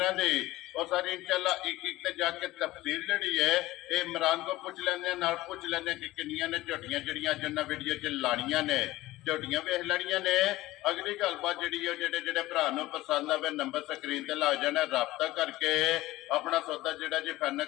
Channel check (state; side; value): quieter; right; 17.5 dB